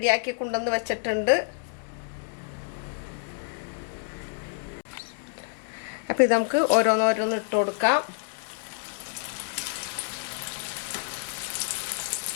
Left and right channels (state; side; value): silent; right; digital silence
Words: കൊണ്ടുവന്ന് വെച്ചിട്ടുണ്ട്. അപ്പോൾ ഇത് നമുക്ക് ഓരോന്ന് ഇട്ട് കൊടുക്കാം.